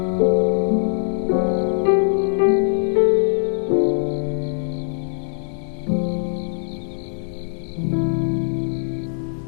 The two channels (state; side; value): silent; right; digital silence